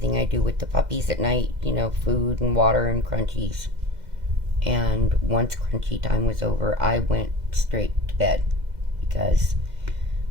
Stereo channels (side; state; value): left; late; 2.0 ms